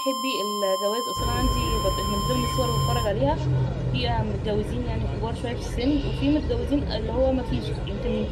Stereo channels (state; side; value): identical; both; correlation 1.00